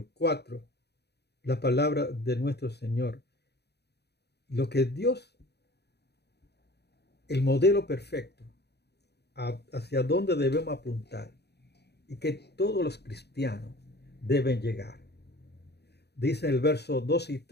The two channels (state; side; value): late; right; 0.48 ms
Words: 4, la palabra de nuestro Señor. Lo que Dios, el modelo perfecto, hacia dónde debemos apuntar y que todos los cristianos deben llegar. Dice el verso 12 y